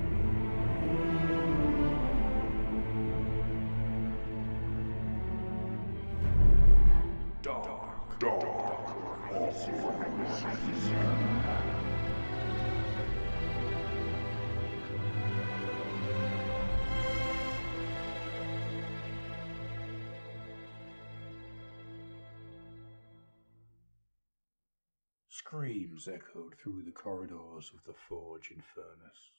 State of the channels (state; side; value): inverted; both; correlation -1.00